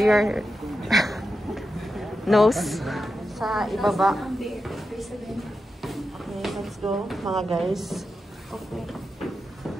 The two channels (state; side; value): normal; both; correlation 0.89